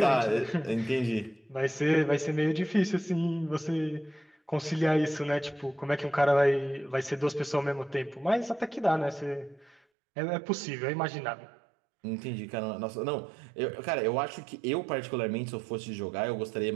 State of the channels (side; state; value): left; drops out; at 9.8 s